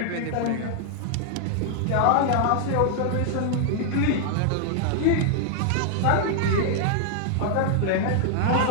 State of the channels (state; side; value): different; both; correlation -0.01